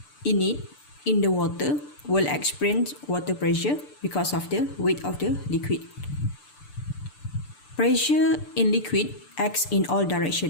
in it in the water will experience water pressure because of the weight of the liquid. Pressure in liquid acts in all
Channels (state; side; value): late; right; 6.8 ms